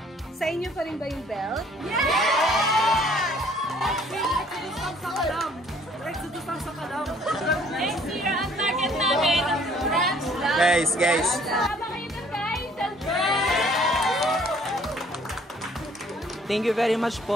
sa inyo pa rin ba yung belt? Yes! Exodus lang sa kalam. Exodus lang sa kalam. Next year, ang target namin, branch lang. Guys. Tama kayo na guys. Thank you very much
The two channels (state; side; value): normal; both; correlation 0.59